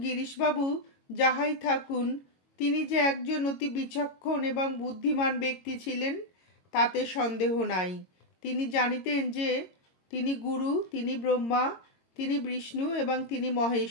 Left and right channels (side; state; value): right; late; 22 ms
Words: গিরিশবাবু যাহাই থাকুন, তিনি যে একজন অতি বিচক্ষণ এবং বুদ্ধিমান ব্যক্তি ছিলেন তাতে সন্দেহ নাই। তিনি জানিতেন যে তিনি গুরু, তিনি ব্রহ্মা, তিনি বিষ্ণু এবং তিনি